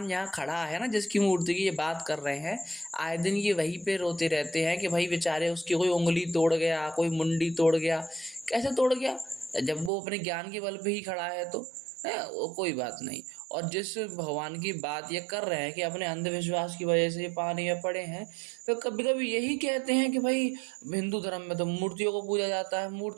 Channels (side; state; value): left; drops out; at 9.9 s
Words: यहाँ खड़ा है ना, जिसकी मूर्ति की ये बात कर रहे हैं, आए दिन ये वहीं पे रोते रहते हैं कि भाई बेचारे उसकी कोई उंगली तोड़ गया, कोई मुंडी तोड़ गया। कैसे तोड़ गया? जब वो अपने ज्ञान के बल पे ही खड़ा है तो है वो कोई बात नहीं। और जिस भगवान की बात ये कर रहे हैं कि अपने अंधविश्वास की वजह से ये पानी में पड़े हैं, फिर कभी कभी यही कहते हैं कि भाई हिंदू धर्म में तो मूर्तियों को पूजा जाता है,